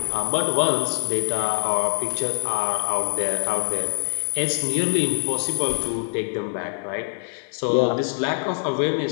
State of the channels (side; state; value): right; silent; 57 dB below the other